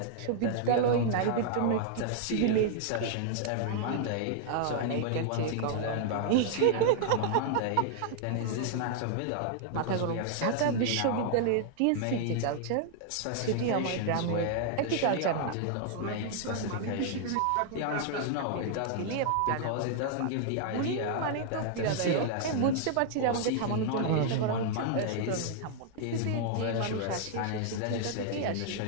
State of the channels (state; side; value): different; both; correlation -0.01